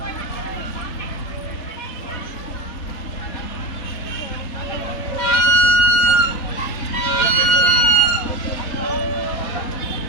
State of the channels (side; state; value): right; late; 4.2 ms